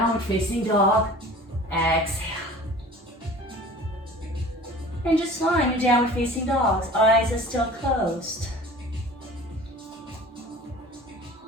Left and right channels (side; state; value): both; normal; correlation 0.43